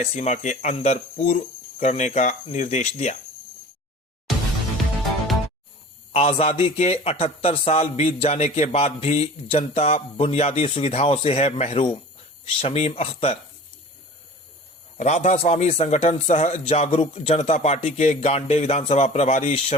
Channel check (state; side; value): normal; both; correlation 0.41